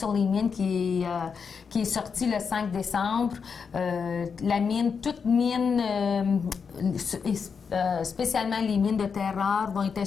les mines qui est sortie le 5 décembre. La mine, toute mine, spécialement les mines de terre rare, vont être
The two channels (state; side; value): quieter; right; 6.0 dB